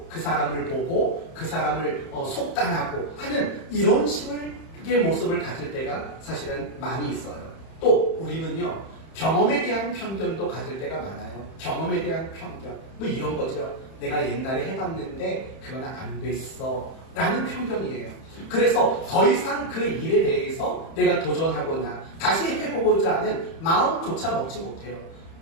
그 사람을 보고 그 사람을 속단하고 하는 이런 식의 모습을 가질 때가 사실은 많이 있어요. 또 우리는요, 경험에 대한 편견도 가질 때가 많아요. 경험에 대한 편견. 뭐 이런 거죠. 내가 옛날에 해봤는데 그건 안 됐어. 라는 편견이에요. 그래서 더 이상 그 일에 대해서 내가 도전하거나 다시 해보고자 하는 마음조차 먹지 못해요.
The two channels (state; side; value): late; right; 31 ms